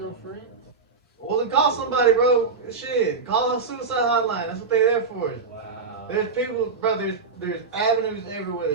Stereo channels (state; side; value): quieter; left; 4.6 dB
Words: friends. Well, then call somebody, bro. Shit, call a suicide hotline. That's what they're there for. Wow. There's people, bro. There's avenues everywhere